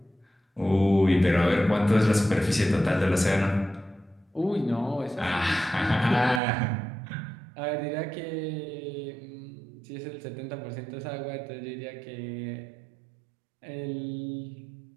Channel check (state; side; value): drops out; left; at 6.4 s